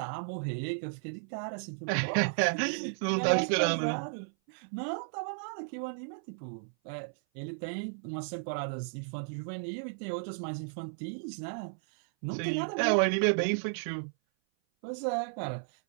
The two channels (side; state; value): left; silent; 55 dB below the other